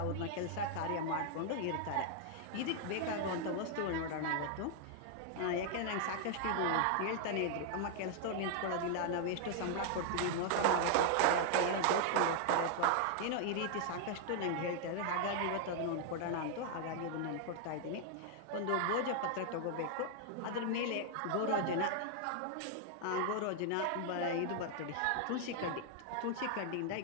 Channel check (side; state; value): both; different; correlation 0.00